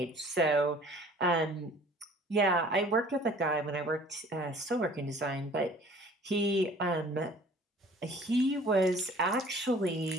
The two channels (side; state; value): both; normal; correlation 0.50